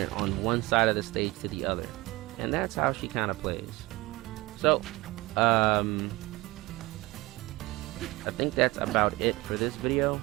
on one side of the stage to the other, and that's how she kind of plays. So I think that's about it for this video.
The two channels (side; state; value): left; quieter; 21.1 dB